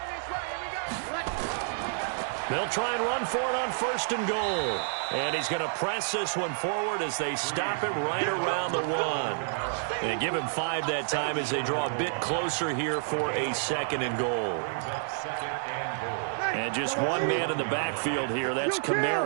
Here we go. They'll try and run for it on 1st and goal. And he's going to press this one forward as they stop him right around the 1. And give him 5 that time as they draw a bit closer here for a 2nd and goal. And just one man in the backfield here. That's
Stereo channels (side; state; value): left; silent; digital silence